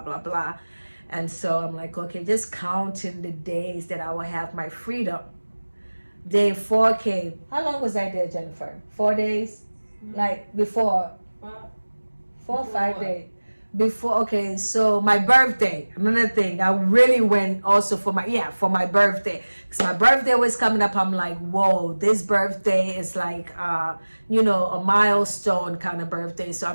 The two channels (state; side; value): inverted; both; correlation -1.00